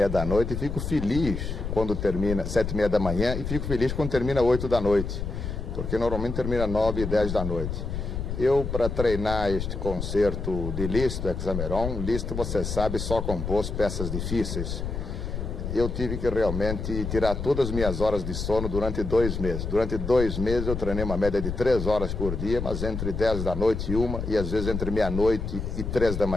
da noite e fico feliz quando termina 7h30 da manhã e fico feliz quando termina 8 da noite, porque normalmente termina 9 e 10 da noite. Eu, para treinar este concerto de Liszt, Hexameron, Liszt, você sabe, só compôs peças difíceis. Eu tive que realmente tirar todas as minhas horas de sono durante 2 meses. Durante 2 meses eu treinei uma média de 3 horas por dia, mas entre 10 da noite e 1, e às vezes entre meia-noite e 3 da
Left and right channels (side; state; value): left; noise; rumble, 4 dB below the sound